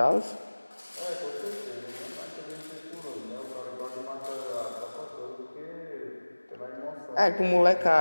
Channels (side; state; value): both; inverted; correlation -1.00